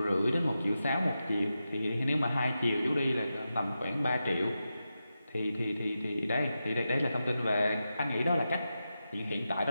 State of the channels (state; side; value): inverted; both; correlation -0.90